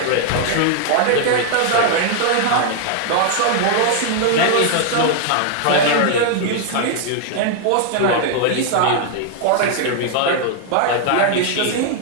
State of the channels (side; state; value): both; different; correlation 0.00